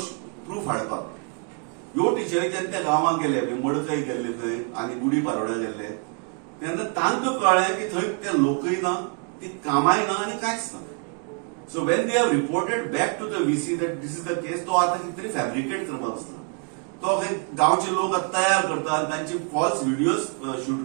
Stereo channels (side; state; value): left; quieter; 39.0 dB